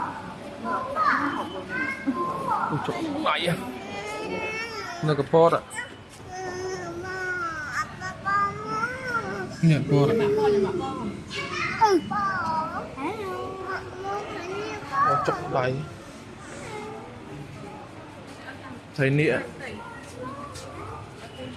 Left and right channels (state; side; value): identical; both; correlation 1.00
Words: ôi trời mày à nó cái pot ạ nhặt pot ạ ôi trời đầy thấy nịa